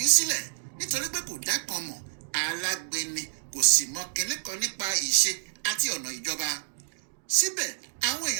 í sílẹ̀ nítorí pé kò dá kan mọ̀, alágbèni, kò sì mọ kinní kan nípa ìṣe àti ọ̀nà ìjọba. Síbẹ̀ àwọn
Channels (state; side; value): silent; left; digital silence